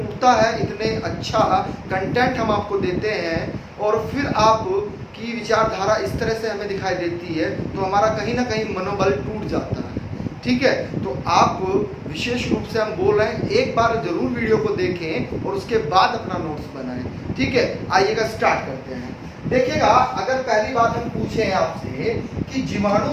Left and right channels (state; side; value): identical; both; correlation 1.00